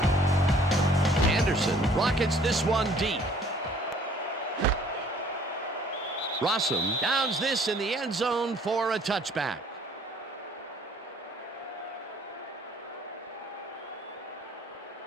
Anderson rockets this one deep. Rossum downs this in the end zone for a touchback.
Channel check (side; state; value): both; normal; correlation 0.57